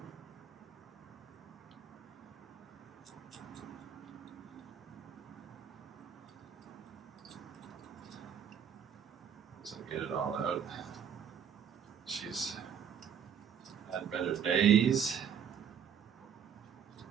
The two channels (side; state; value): left; quieter; 8.1 dB